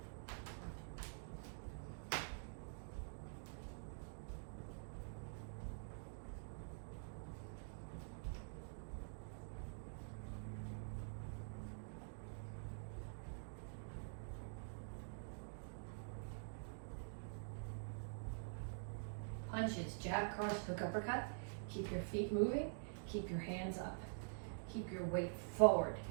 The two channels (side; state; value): left; silent; digital silence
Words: Punches, jab, cross, hook, uppercut. Keep your feet moving, keep your hands up. Keep your weight forward.